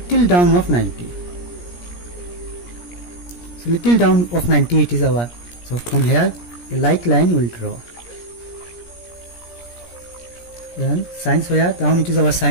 down of 90. So little down of 90 it is our. So from here a light line will draw. Then science where down it is our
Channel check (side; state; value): right; late; 17 ms